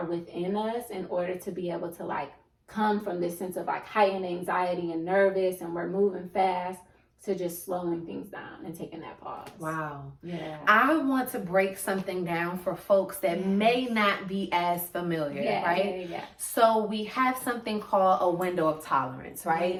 within us in order to be able to like come from this sense of like heightened anxiety and nervous and we're moving fast to just slowing things down and taking that pause. Wow. Yeah. I want to break something down for folks that may not be as familiar, right? Yeah. So we have something called a window of tolerance, right?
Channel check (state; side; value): identical; both; correlation 1.00